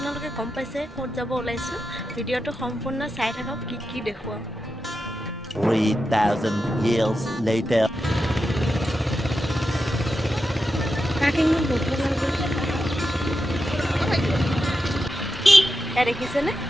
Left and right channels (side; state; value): both; normal; correlation 0.89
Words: গম পাইছে ক'ত যাব ওলাইছোঁ। ভিডিঅ'টো সম্পূৰ্ণ চাই থাকক, কি দেখুৱাওঁ। 3000 years later. দেখিছেনে?